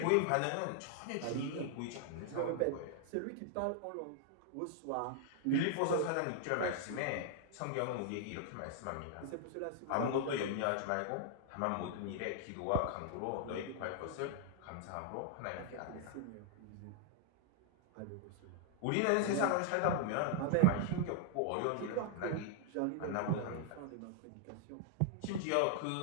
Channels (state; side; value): different; both; correlation 0.00